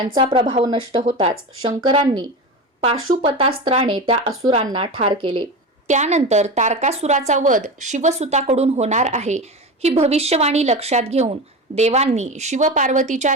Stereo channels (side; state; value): both; normal; correlation 0.25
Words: प्रभाव नष्ट होताच शंकरांनी पाशुपतास्त्राने त्या असुरांना ठार केले. त्यानंतर तारकासुराचा वध शिवसुताकडून होणार आहे ही भविष्यवाणी लक्षात घेऊन देवांनी शिवपार्वतीच्या